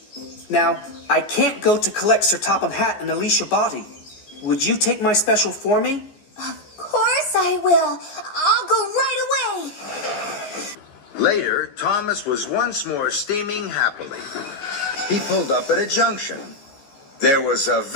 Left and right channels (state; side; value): late; right; 15 ms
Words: Now, I can't go to collect Sir Topham Hatt and Alicia Botti. Would you take my special for me? Of course I will. I'll go right away. Later, Thomas was once more steaming happily. He pulled up at a junction. There was a